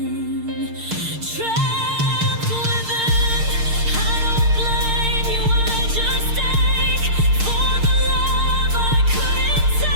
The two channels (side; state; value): left; late; 6.6 ms